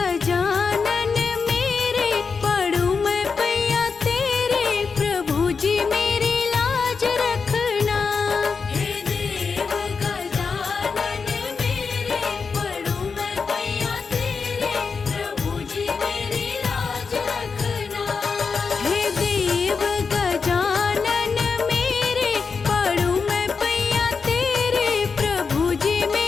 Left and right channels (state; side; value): quieter; right; 5.2 dB